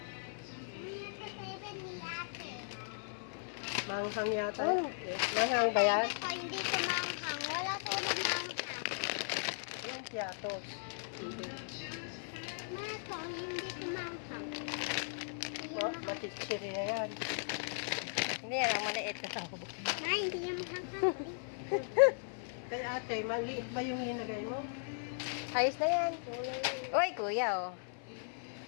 Manghang yata. Oh. Manghang ba yan? Hindi ko manghang. Wala silang manghang. Yung piatos. Hindi. Mato, hindi ko manghang. Matitsiriya yan. Hindi yan, ang maliit. Ay, hindi yan manghang. Kay ate, maliit ba yung linagay mo? Ayos na yan. Uy, kuya, oh.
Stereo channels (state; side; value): silent; right; 53 dB below the other